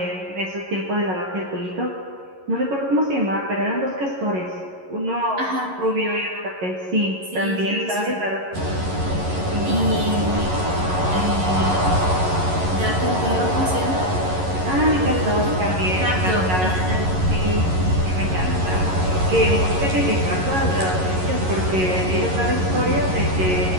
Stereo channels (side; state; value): left; late; 11 ms